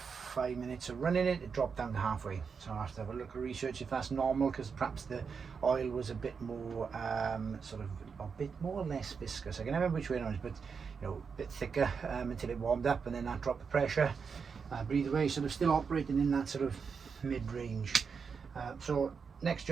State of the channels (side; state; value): left; quieter; 5.8 dB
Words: 5 minutes of running it, it dropped down to halfway. So I have to have a look at research if that's normal, because perhaps the oil was a bit more, sort of a bit more or less viscous. I can never remember which way it was, but you know, a bit thicker until it warmed up, and then that dropped the pressure. But either way, sort of still operating in that sort of mid-range. So next